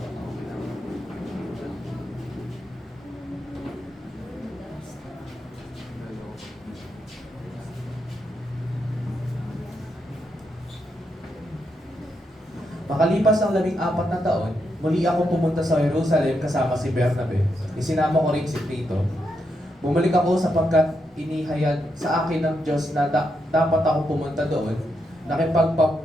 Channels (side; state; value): both; normal; correlation 0.82